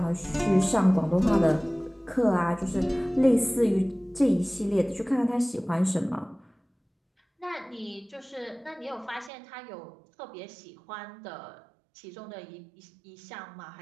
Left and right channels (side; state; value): left; drops out; at 9.3 s